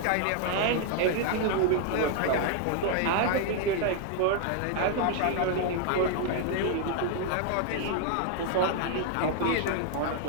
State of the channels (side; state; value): both; different; correlation 0.00